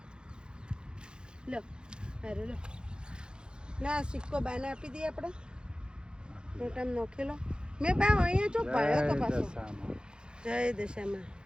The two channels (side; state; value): left; late; 0.049 ms